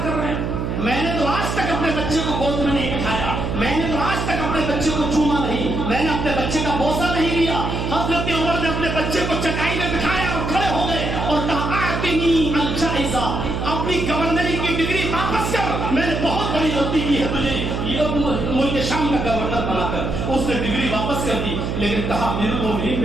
کر رہے ہیں؟ میں نے تو آج تک اپنے بچے کو گود میں نہیں بٹھایا، میں نے تو آج تک اپنے بچے کو چوما نہیں، میں نے اپنے بچے کا بوسہ نہیں لیا. حضرت عمر نے اپنے بچے کو چٹائی میں بٹھایا اور کھڑے ہو گئے اور کہا آتنی الجائزہ، اپنی گورنری کی ڈگری واپس کر. میں نے بہت بڑی غلطی کی ہے تجھے ملک شام کا گورنر بنا کر. اس نے ڈگری واپس کر دی، لیکن کہا امیر المومنین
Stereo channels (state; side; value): noise; right; hum, 2 dB below the sound